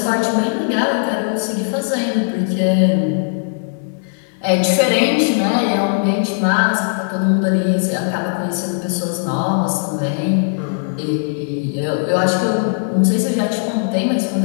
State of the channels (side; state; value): right; silent; 66 dB below the other